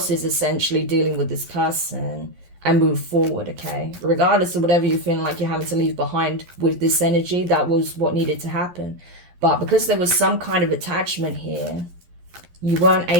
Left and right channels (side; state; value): left; late; 11 ms